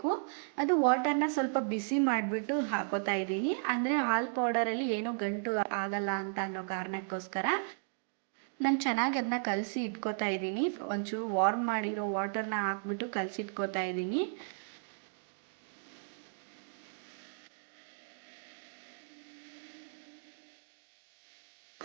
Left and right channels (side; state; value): left; silent; digital silence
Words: ಅದು ವಾಟರ್ನ ಸ್ವಲ್ಪ ಬಿಸಿ ಮಾಡಿಬಿಟ್ಟು ಹಾಕೋತಾ ಇದ್ದೀನಿ. ಅಂದರೆ ಹಾಲು ಪೌಡರಲ್ಲಿ ಏನೂ ಗಂಟು ಆಗಲ್ಲ ಅಂತ ಅನ್ನೋ ಕಾರಣಕ್ಕೋಸ್ಕರ ನಾನು ಚೆನ್ನಾಗಿ ಅದನ್ನ ಕಲಸಿ ಇಟ್ಕೋತಾ ಇದ್ದೀನಿ. ಒಂಚೂರು ವಾರ್ಮ್ ಮಾಡಿರೋ ವಾಟರ್ನ ಹಾಕ್ಬಿಟ್ಟು ಕಲಸಿ ಇಟ್ಕೋತಾ ಇದ್ದೀನಿ.